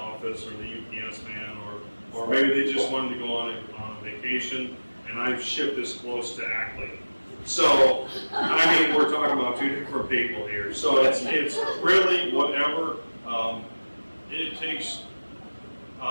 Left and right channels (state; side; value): inverted; both; correlation -1.00